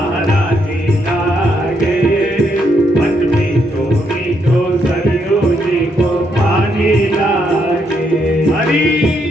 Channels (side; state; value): both; normal; correlation 0.76